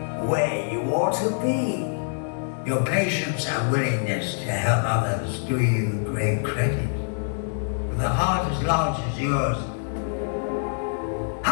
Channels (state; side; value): silent; right; digital silence